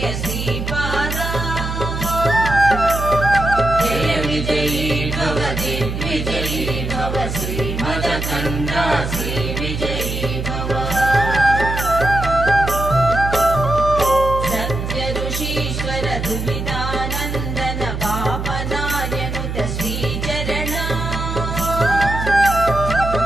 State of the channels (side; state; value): right; noise; hum, 4 dB below the sound